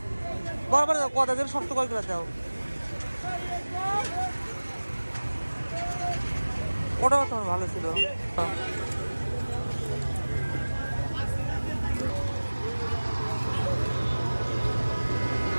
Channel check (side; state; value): both; inverted; correlation -1.00